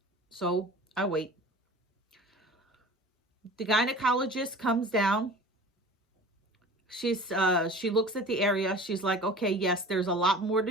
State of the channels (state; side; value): normal; both; correlation 0.41